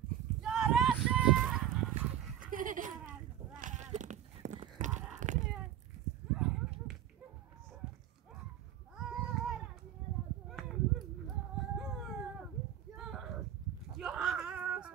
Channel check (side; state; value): left; quieter; 11.0 dB